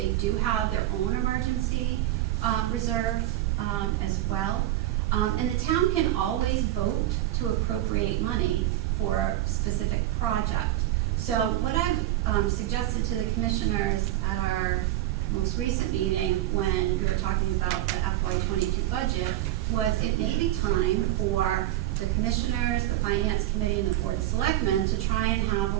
do have their own emergency reserve as well. And the town can always vote to appropriate money for a specific project. So what I've suggested to the commissioners at our most recent meeting, when we were talking about the FY22 budget, was it may be time for the commissioners, the finance committee, and the board of selectmen to try and have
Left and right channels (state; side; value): quieter; left; 14.6 dB